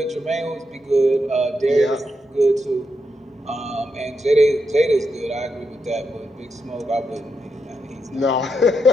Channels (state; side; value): normal; both; correlation 0.84